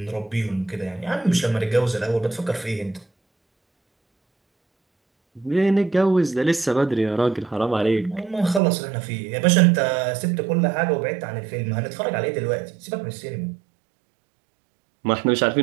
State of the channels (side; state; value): left; drops out; at 8.6 s